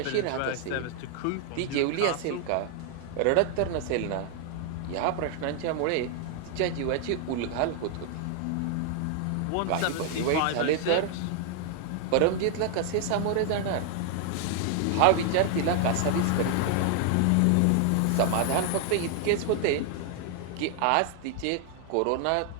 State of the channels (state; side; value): different; both; correlation 0.00